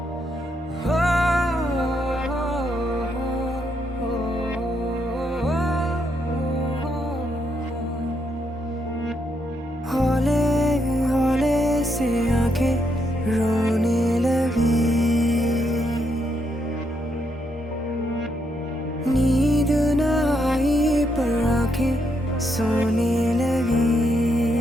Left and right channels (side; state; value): both; normal; correlation 0.78